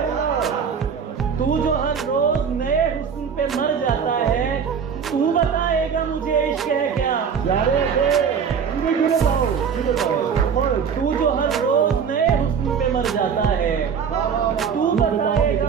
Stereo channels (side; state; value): left; quieter; 6.8 dB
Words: तू जो हर रोज नए हुस्न पे मर जाता है, तू बताएगा मुझे इश्क है क्या। तू जो हर रोज नए हुस्न पे मर जाता है, तू